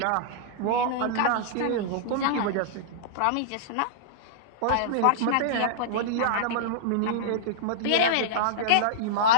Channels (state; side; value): different; both; correlation -0.02